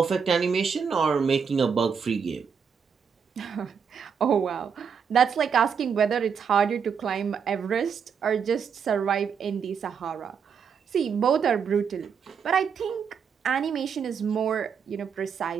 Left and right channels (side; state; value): left; quieter; 6.7 dB